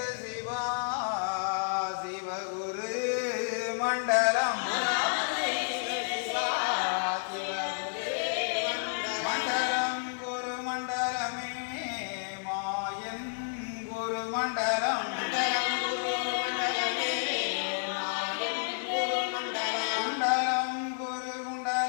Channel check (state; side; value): silent; right; digital silence